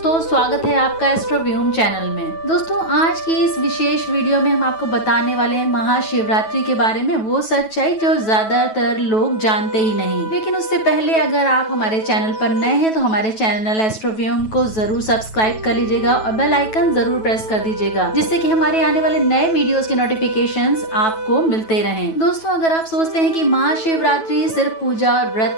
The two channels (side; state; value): right; late; 9.2 ms